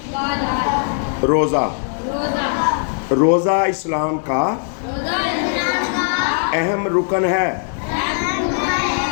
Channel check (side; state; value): right; silent; digital silence